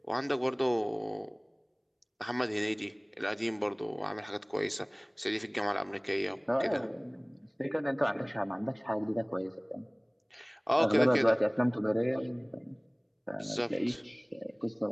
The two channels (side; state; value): both; identical; correlation 1.00